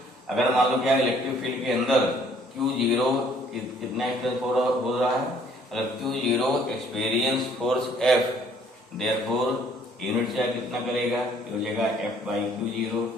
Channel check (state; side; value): normal; both; correlation 0.60